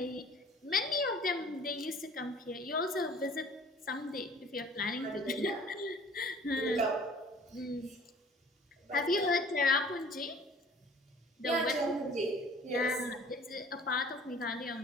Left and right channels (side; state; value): both; normal; correlation 0.50